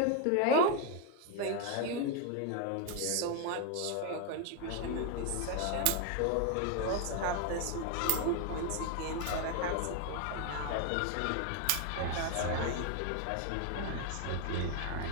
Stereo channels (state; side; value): different; both; correlation 0.01